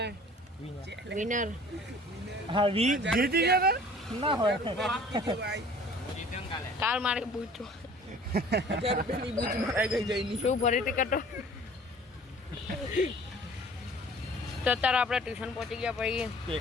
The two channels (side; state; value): both; normal; correlation 0.49